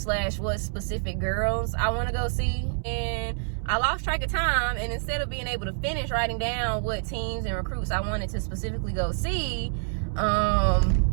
what specific girls I want to go see. And I lost track of time, and instead of being able to finish writing down what teams and recruits I wanted to specifically go see, I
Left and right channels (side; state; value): left; silent; 60 dB below the other